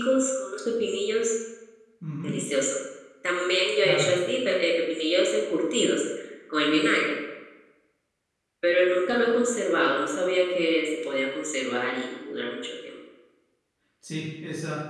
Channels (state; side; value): identical; both; correlation 1.00